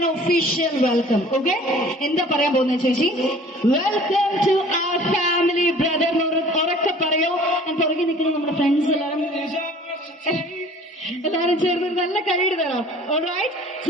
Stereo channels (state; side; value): normal; both; correlation 0.49